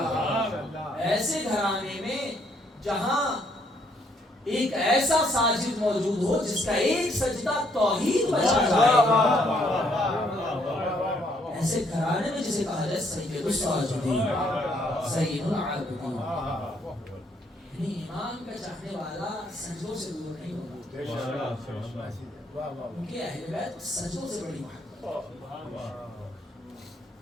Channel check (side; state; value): both; normal; correlation 0.69